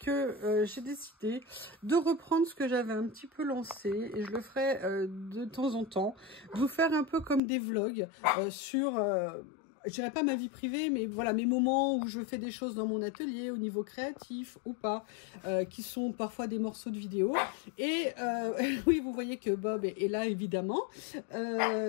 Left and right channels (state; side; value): drops out; right; at 7.4 s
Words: j'ai décidé de reprendre ce que j'avais un petit peu lancé et je le ferai de temps en temps, de vous faire un peu comme des vlogs sur, je dirais pas ma vie privée, mais voilà mes moments où je fais des choses dans mon atelier au niveau créatif ou pas, qui sont parfois des morceaux de vidéo. Et oui, vous voyez que Bob est là évidemment,